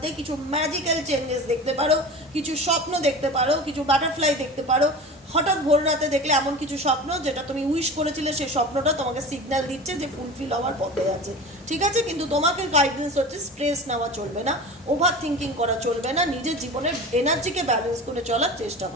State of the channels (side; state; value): both; normal; correlation 0.33